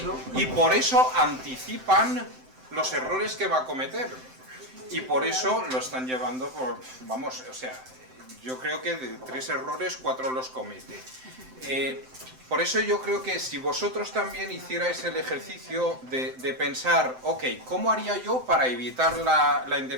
por eso anticipan los errores que va a cometer. Y por eso lo están llevando por, vamos, o sea, yo creo que de 3 errores, 4 los comete. Por eso yo creo que si vosotros también hicierais el ejercicio de pensar, ok, ¿cómo haría yo para evitar la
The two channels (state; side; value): late; left; 7.8 ms